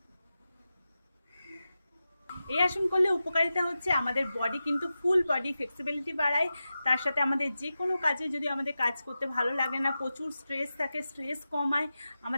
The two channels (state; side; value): inverted; both; correlation -0.93